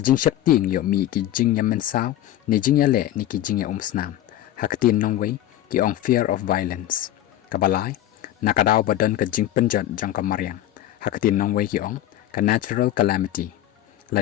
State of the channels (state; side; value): quieter; right; 13.0 dB